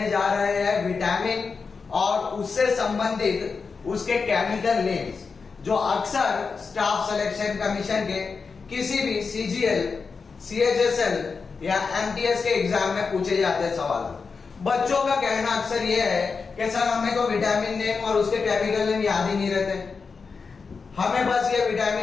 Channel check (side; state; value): right; quieter; 5.0 dB